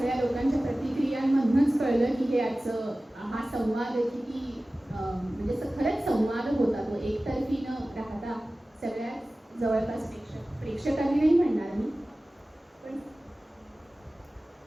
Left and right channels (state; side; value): normal; both; correlation 0.97